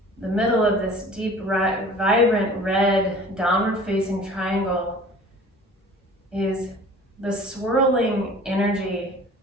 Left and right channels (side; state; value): both; normal; correlation 0.45